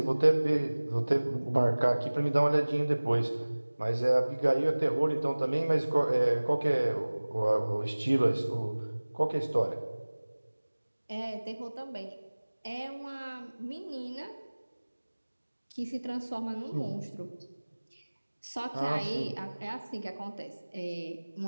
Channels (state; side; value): inverted; both; correlation -1.00